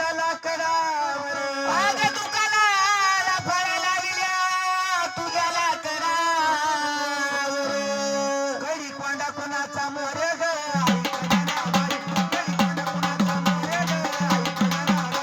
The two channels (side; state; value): both; identical; correlation 1.00